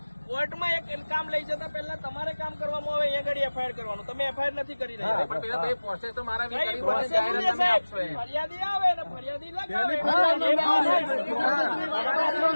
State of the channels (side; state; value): both; inverted; correlation -1.00